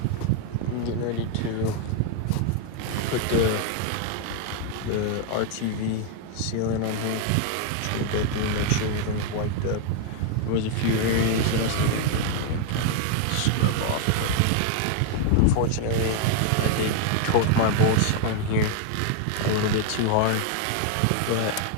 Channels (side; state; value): both; different; correlation 0.00